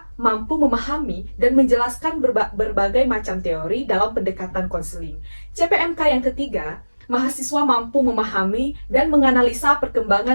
mampu memahami dan menjelaskan berbagai macam teori dalam pendekatan konseling. CPMK yang ketiga, mahasiswa mampu memahami dan menganalisa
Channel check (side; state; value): both; inverted; correlation -1.00